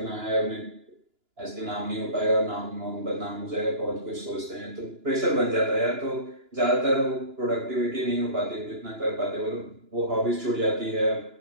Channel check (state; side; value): late; left; 2.9 ms